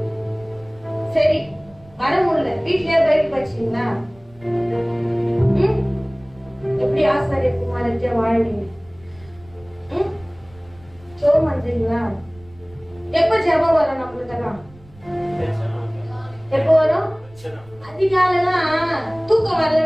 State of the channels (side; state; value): right; noise; rumble, 25 dB below the sound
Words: சரி வர முடியல, வீட்லயே பைக் வச்சீங்களா? எப்படி ஆசாரிய குமாரத்தியா வாழ்வீங்க? சோம் பண்றீங்களா? எப்ப ஜெபம் வரும் நம்மளுக்கெல்லாம்? எப்ப வரும்? அதிகாலைலாம் தூக்கம்